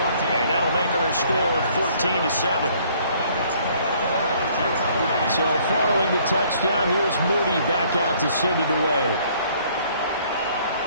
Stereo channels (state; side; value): inverted; both; correlation -0.61